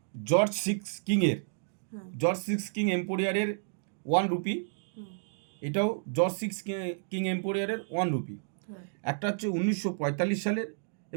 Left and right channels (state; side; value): silent; left; digital silence